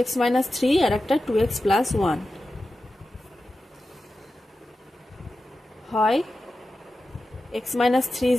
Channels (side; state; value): both; normal; correlation 0.93